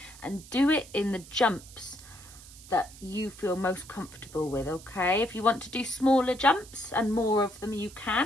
and do it in the jumps that you feel most comfortable with, okay? If you want to do smaller jumps and more of them, you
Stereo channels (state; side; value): noise; right; hiss, 19 dB below the sound